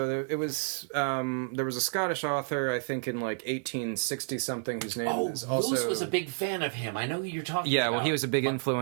there was a Scottish author, I think in like 1860 something, whose name is also... Lewis was a big fan of him. I know who you're talking about. Yeah, well, he was a big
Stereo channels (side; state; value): left; silent; digital silence